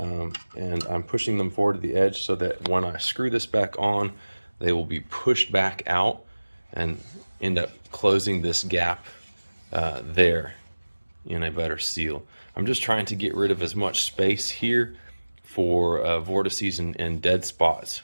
I'm pushing them forward to the edge so that when I screw this back on, they will be pushed back out and end up closing this gap there in a better seal. I'm just trying to get rid of as much space here for vortices and dead spots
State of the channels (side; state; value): both; inverted; correlation -1.00